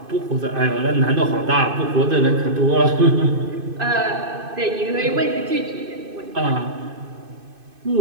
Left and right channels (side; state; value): left; late; 2.5 ms